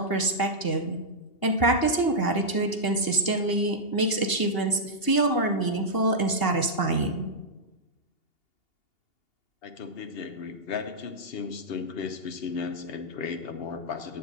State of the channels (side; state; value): right; late; 2.8 ms